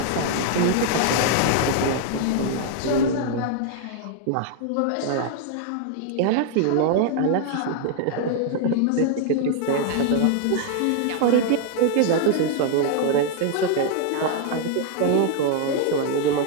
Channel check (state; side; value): different; both; correlation 0.00